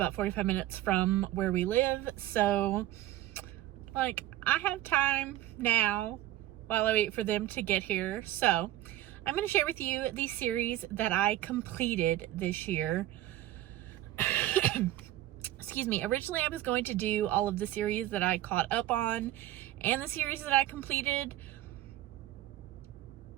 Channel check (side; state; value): left; quieter; 14.4 dB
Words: 45 minutes from where we live, so I have time now while I wait for them to get here. So I'm going to share with you the series that I completed this year. Excuse me. Originally, I was going to do all of the series that I caught up on and the series that I completed,